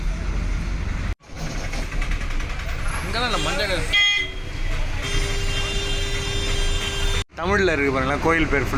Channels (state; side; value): identical; both; correlation 1.00